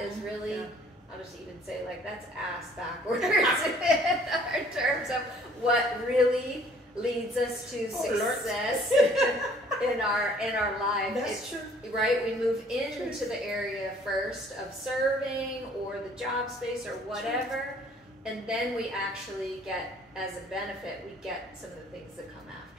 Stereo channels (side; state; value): both; normal; correlation 0.57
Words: really, I'll just even say, like, that's ass backwards in terms of what really leads us to success in our life. That's true. Right? We move into the area first of serving or the job space or whatever, and then we actually get, as a benefit, we get some of the things that come